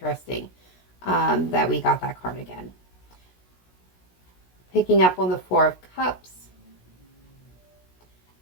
that we got that card again. Picking up on the Four of Cups.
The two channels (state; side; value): late; right; 16 ms